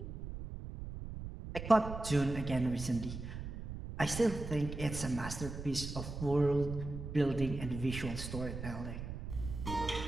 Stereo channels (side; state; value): right; noise; rumble, 8 dB below the sound